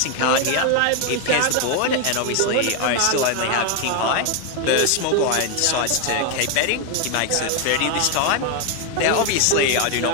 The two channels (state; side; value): different; both; correlation 0.01